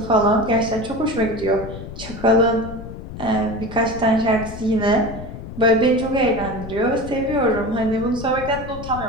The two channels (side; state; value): left; noise; rumble, 11 dB below the sound